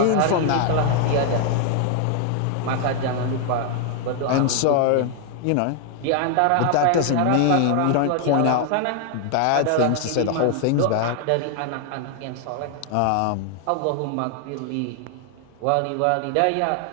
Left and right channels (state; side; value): different; both; correlation 0.00